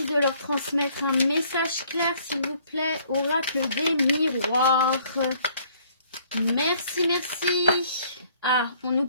de leur transmettre un message clair, s'il vous plaît, oracle des miroirs. Merci, merci. Ah, on nous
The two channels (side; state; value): both; inverted; correlation -0.61